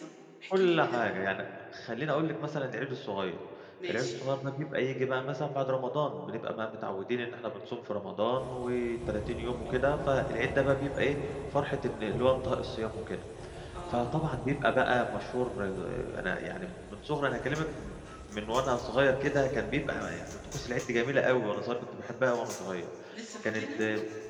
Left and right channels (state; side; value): identical; both; correlation 1.00